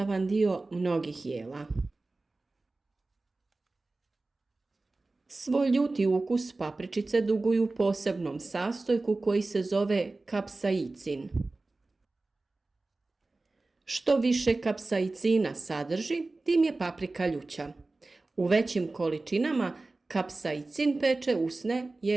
dio mnogih jela. Svoj ljuti ukus papričice duguju posebnom sastojku koji se zove kapsaicin. Što više kapsaicina sadrži, tim je paprika ljuća. U većim količinama kapsaicin peče usne,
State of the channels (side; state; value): left; quieter; 3.3 dB